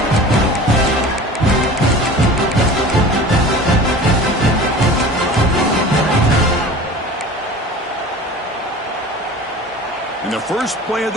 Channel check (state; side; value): normal; both; correlation 0.39